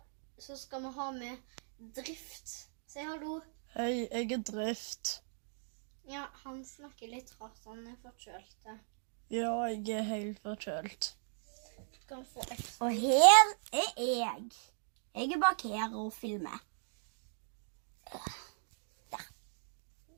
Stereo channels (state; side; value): silent; left; digital silence